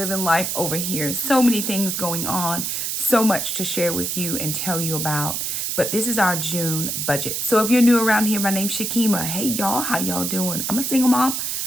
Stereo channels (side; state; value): right; noise; hiss, 2 dB below the sound